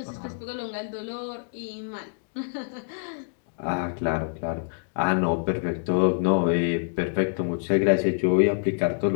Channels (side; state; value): right; silent; digital silence